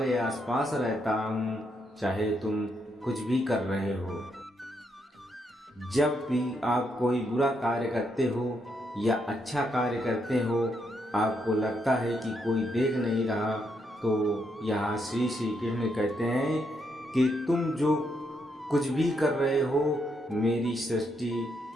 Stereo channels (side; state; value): both; normal; correlation 0.78